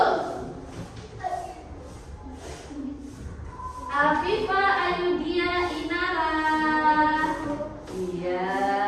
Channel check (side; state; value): both; identical; correlation 1.00